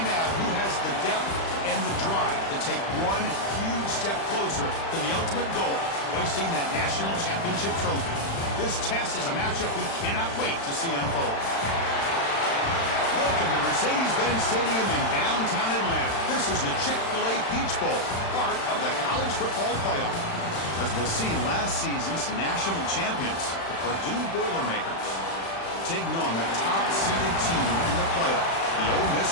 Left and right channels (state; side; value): late; right; 36 ms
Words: out who has the depth and the drive to take one huge step closer to the ultimate goal, hoisting that national championship trophy. This test is a matchup we cannot wait to see unfold. Welcome to Mercedes-Benz Stadium in downtown Atlanta. This is the Chick-fil-A Peach Bowl, part of the college football playoff. As we'll see, last season's national champions, the Purdue Boilermakers, taking on the top-seeded team in the playoff, the Ole Miss